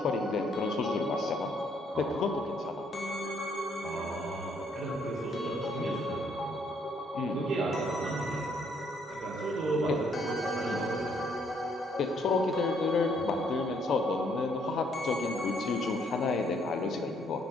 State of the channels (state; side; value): normal; both; correlation 0.68